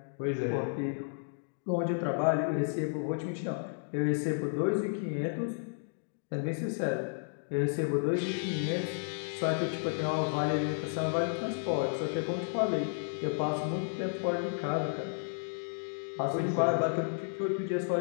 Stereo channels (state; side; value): silent; right; digital silence